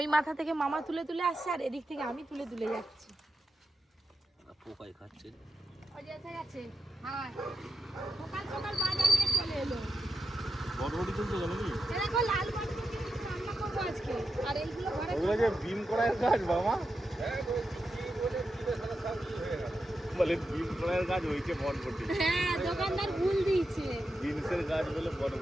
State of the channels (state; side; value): normal; both; correlation 0.88